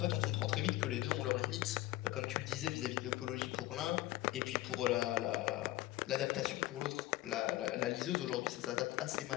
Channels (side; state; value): right; quieter; 16.5 dB